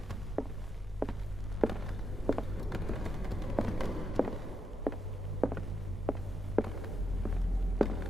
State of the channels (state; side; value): normal; both; correlation 0.82